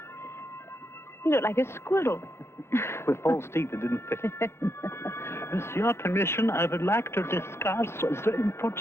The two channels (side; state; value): right; late; 0.12 ms